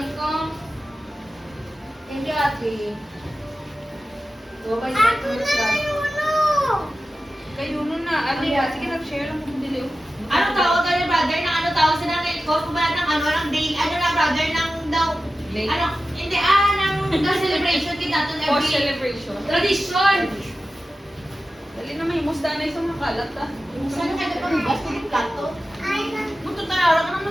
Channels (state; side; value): normal; both; correlation 0.94